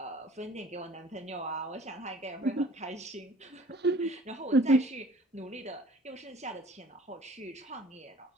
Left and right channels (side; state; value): both; normal; correlation 0.50